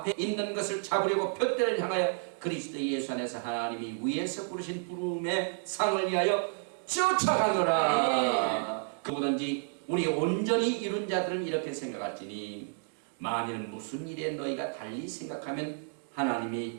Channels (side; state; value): left; silent; 57 dB below the other